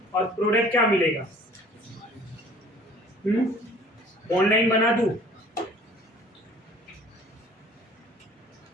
और प्रोडक्ट क्या मिलेगा? बॉन्ड लाइन बना दूं,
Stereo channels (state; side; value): normal; both; correlation 0.51